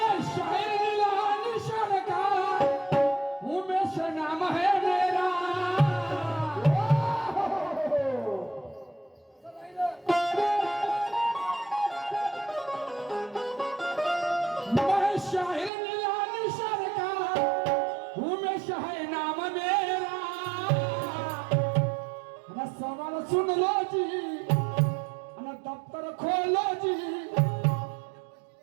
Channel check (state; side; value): drops out; left; at 15.7 s